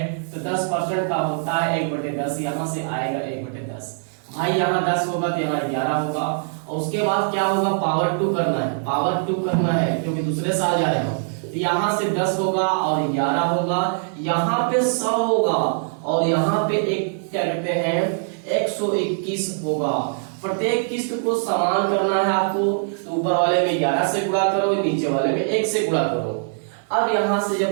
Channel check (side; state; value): left; silent; digital silence